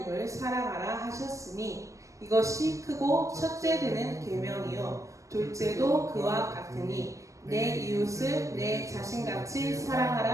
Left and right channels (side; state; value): left; late; 0.15 ms